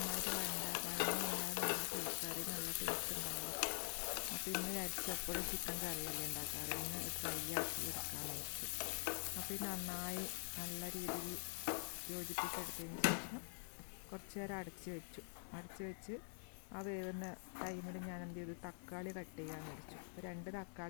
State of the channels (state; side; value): silent; right; digital silence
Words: നന്നായി കറി നല്ല ടേസ്റ്റ് ഉണ്ടാവും. അപ്പോൾ ഇന്ന് വിചാരിച്ചപ്പോഴും ചിക്കൻ കറിയല്ലേ ഉണ്ടാക്കാറ്, ഇന്ന് ഡ്രൈ ആക്കി എടുക്കാമെന്ന് വെച്ചു. അപ്പോൾ ഇത് നന്നായി നല്ല രീതിയിൽ യോജിപ്പിച്ചെടുത്തതിന് ശേഷം കുറച്ച് നേരം അടച്ച് വെച്ച് ആ വേവുന്ന ടൈമിൽ ഞാൻ എന്ത് ചെയ്തു, തക്കാളി കട്ട് ചെയ്യാമെന്ന് വെച്ചു. അപ്പോൾ 2